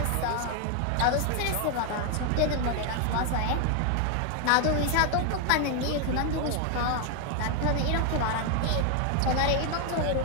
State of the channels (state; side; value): different; both; correlation 0.01